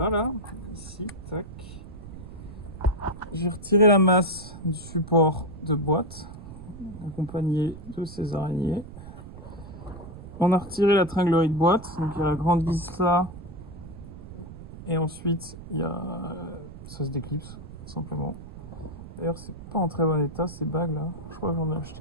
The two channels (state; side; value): noise; right; rumble, 14 dB below the sound